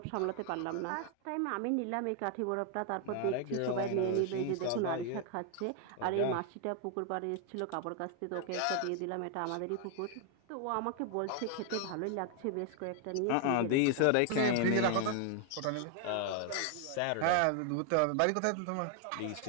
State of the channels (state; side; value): different; both; correlation 0.00